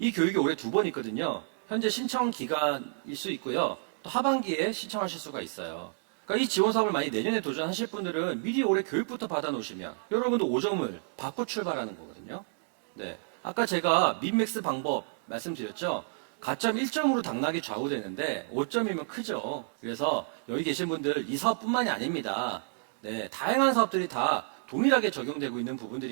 교육이 올해 2번 있거든요. 현재 신청 기간일 수 있고요. 또 하반기에 신청하실 수가 있어요. 그러니까 이 지원 사업을 많이 내년에 도전하실 분들은 미리 올해 교육부터 받아 놓으시면 여러분도 5점을 받고 출발하는 거거든요. 네, 아까 제가 민맥스 방법 말씀드렸죠. 가점 1점으로 당락이 좌우되는데 5점이면 크죠. 그래서 여기 계신 분들 이 사업뿐만이 아닙니다. 네, 다양한 사업들이 다 동일하게 적용되고 있는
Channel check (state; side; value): silent; left; digital silence